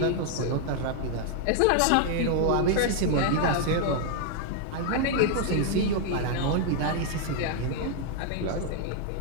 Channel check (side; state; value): both; different; correlation 0.00